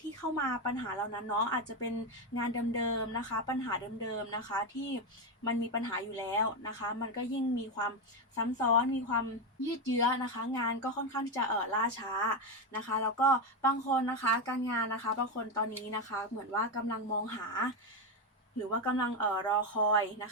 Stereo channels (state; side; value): normal; both; correlation 0.10